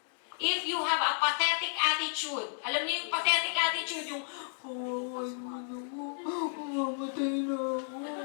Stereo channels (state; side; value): silent; right; digital silence